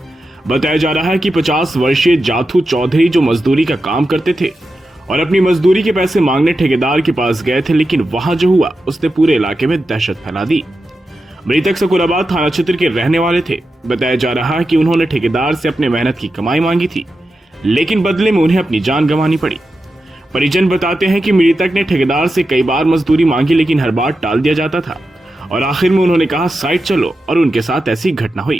बताया जा रहा है कि 50 वर्षीय जाथू चौधरी जो मजदूरी का काम करते थे और अपनी मजदूरी के पैसे मांगने ठेकेदार के पास गए थे, लेकिन वहां जो हुआ उसने पूरे इलाके में दहशत फैला दी। मृतक सकुराबाद थाना क्षेत्र के रहने वाले थे। बताया जा रहा है कि उन्होंने ठेकेदार से अपने मेहनत की कमाई मांगी थी, लेकिन बदले में उन्हें अपनी जान गंवानी पड़ी। परिजन बताते हैं कि मृतक ने ठेकेदार से कई बार मजदूरी मांगी, लेकिन हर बार टाल दिया जाता था और आखिर में उन्होंने कहा साइड चलो, और उनके साथ ऐसी घटना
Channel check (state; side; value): normal; both; correlation 0.90